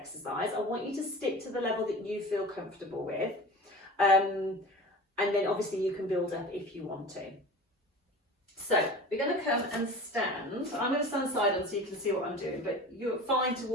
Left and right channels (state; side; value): normal; both; correlation 0.37